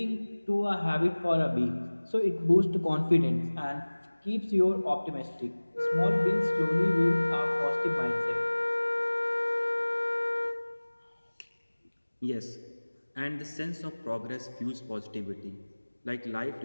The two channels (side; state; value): both; inverted; correlation -1.00